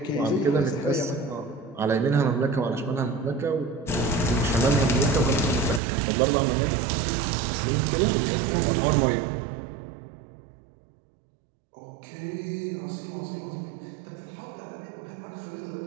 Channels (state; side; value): drops out; left; at 5.8 s